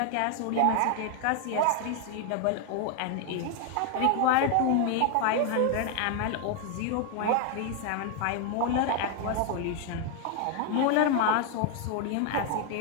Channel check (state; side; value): different; both; correlation 0.01